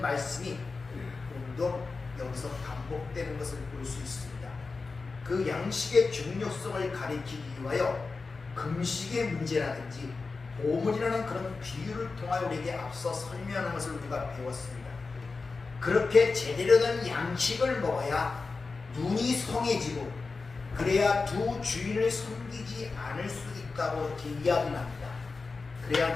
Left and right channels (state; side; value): quieter; right; 4.2 dB